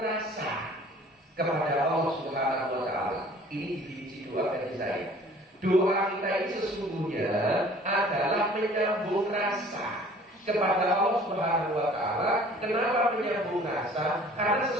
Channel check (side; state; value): both; normal; correlation 0.51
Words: kepada Allah Subhanahu wa taala. Ini definisi doa dari saya. Doa kita ini sesungguhnya adalah menyambung rasa kepada Allah Subhanahu wa taala. Kenapa menyambung rasa? Karena